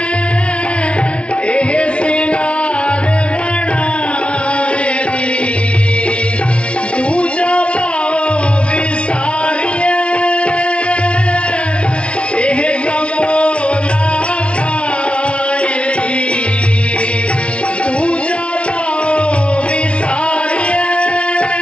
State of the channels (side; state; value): right; late; 0.060 ms